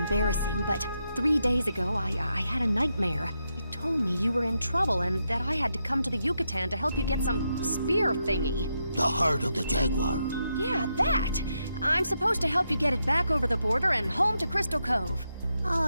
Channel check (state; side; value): inverted; both; correlation -0.83